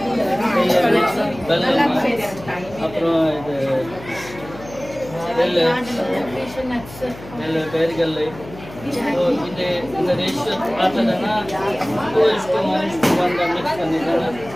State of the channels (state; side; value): noise; left; hum, 16 dB below the sound